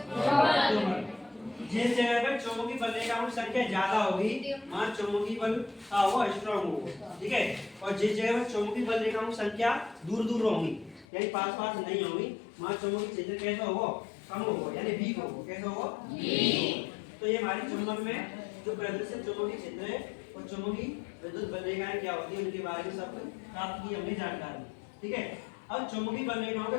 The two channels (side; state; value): right; drops out; at 11.1 s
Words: दुर्बल। जिस जगह पर चुंबकीय बलरेखा की संख्या ज्यादा होगी वहां चुंबकीय बल का होगा स्ट्रांग होगा। ठीक है, और जिस जगह पर चुंबकीय बलरेखा की संख्या दूर होगी यानी पास नहीं होगी वहां चुंबकीय क्षेत्र कैसा होगा? कम होगा यानी वीक होगा। कैसा होगा? वीक। तो ये हमारी चुंबक में जो प्रदर्शित चुंबकीय क्षेत्र है और चुंबकीय विद्युत बलरेखाएं क्या होती है उनके बारे में सब प्राप्त की हमने जानकारी। ठीक है, अब चुंबकीय बलरेखाओं के